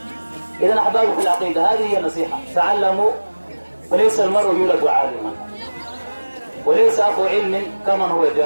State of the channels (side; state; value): both; inverted; correlation -1.00